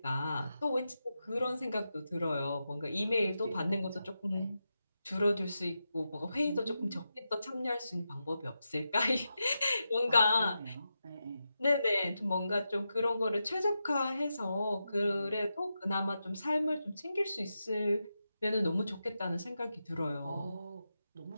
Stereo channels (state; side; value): inverted; both; correlation -0.89